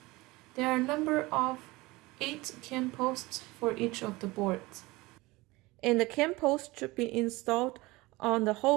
There are a number of 8 cam posts for each of the boards. And the cam post should be installed on the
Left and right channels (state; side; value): quieter; left; 21.7 dB